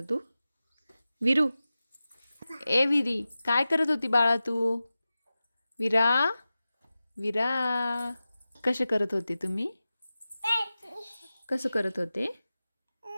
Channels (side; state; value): both; inverted; correlation -0.95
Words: तू? विरू, ए विरी, काय करत होती बाळा तू? विरा, विरा, कसे करत होते तुम्ही? कसं करत होते?